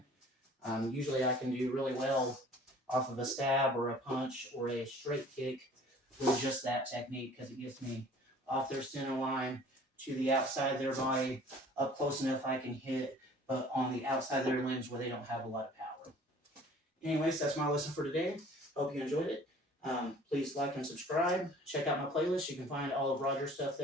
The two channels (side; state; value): both; normal; correlation 0.50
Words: Usually I can do really well off of a stab or a punch or a straight kick with just that technique, because it gets me off their center line to the outside of their body, up close enough I can hit, but on the outside of their limbs where they don't have a lot of power. Anyways, that's my lesson for today. Hope you enjoyed it. Please like and subscribe. Check out my playlist. You can find all of Roger's stuff